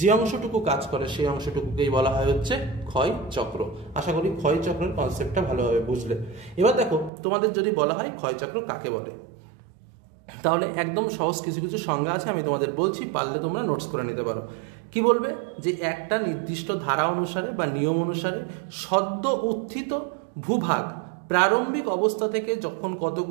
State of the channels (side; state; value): left; drops out; at 7.1 s